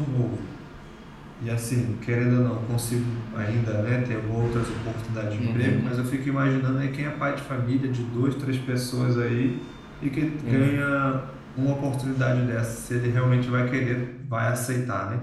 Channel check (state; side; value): identical; both; correlation 1.00